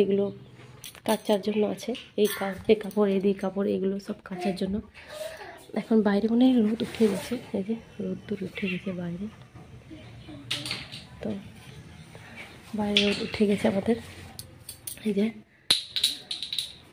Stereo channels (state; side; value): identical; both; correlation 1.00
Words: এগুলো কাচার জন্য আছে, এই কাপড় এগুলো সব কাচার জন্য। এখন বাইরে মনে হয় রোদ উঠে গেছে, এই যে রোদ উঠে গেছে বাইরে। তো বাইরে রোদ উঠে গেছে আমাদের। এই যে